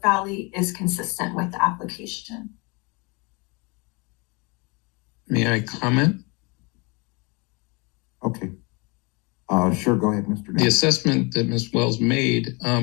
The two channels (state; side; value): quieter; right; 29.0 dB